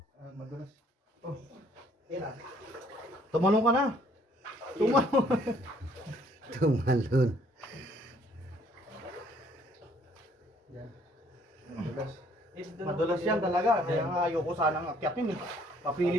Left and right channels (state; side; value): normal; both; correlation 0.63